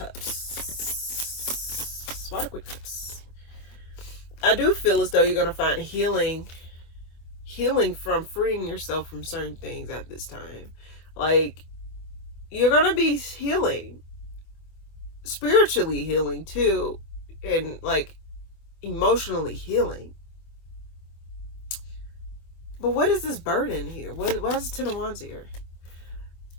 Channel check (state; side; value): late; right; 25 ms